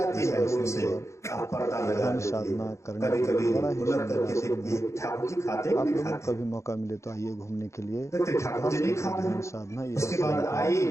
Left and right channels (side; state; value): right; late; 0.14 ms